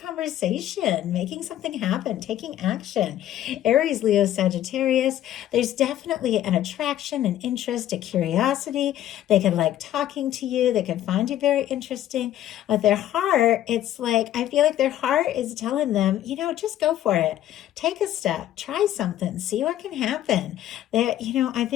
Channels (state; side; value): quieter; right; 12.4 dB